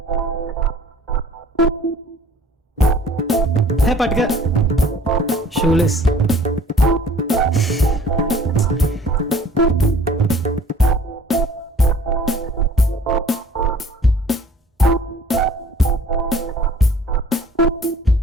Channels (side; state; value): both; normal; correlation 0.52